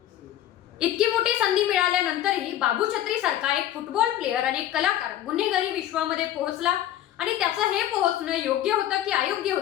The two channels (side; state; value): right; quieter; 12.2 dB